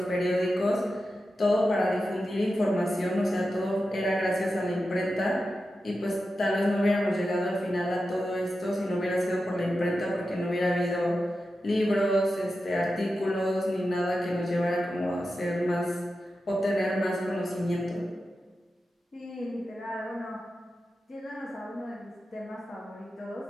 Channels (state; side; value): normal; both; correlation 0.91